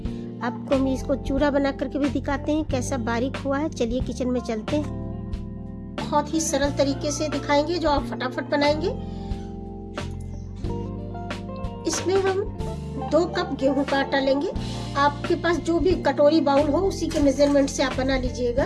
आपको हम इसको चूरा बना करके भी दिखाते हैं कैसा बारीक हुआ है। चलिए किचन में चलते हैं। बहुत ही सरल तरीके से दिखाएंगे जो आप फटाफट बनाएंगे। इसमें हम 2 कप गेहूं का आटा लेंगे। आपके पास जो भी कटोरी बाउल हो उसी के मेजरमेंट से आप बना लीजिएगा।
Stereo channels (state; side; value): identical; both; correlation 1.00